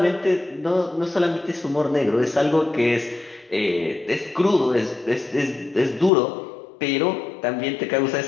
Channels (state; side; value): drops out; right; at 6.1 s